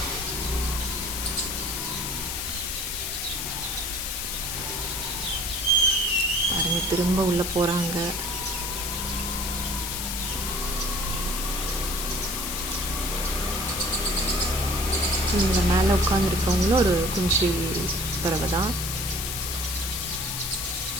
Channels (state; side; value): noise; left; hiss, 3 dB below the sound